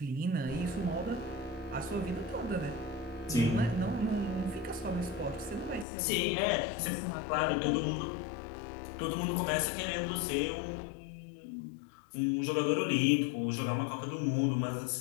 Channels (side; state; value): right; drops out; at 5.9 s